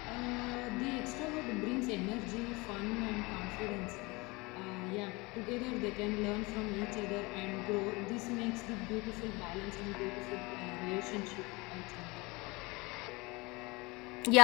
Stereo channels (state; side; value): quieter; right; 24.9 dB